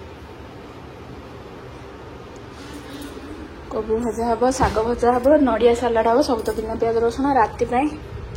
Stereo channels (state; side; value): identical; both; correlation 1.00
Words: कोबी भजा हम शाग भजा हम नड़िया सालाड हम सब तो बिना प्याज रसुण राति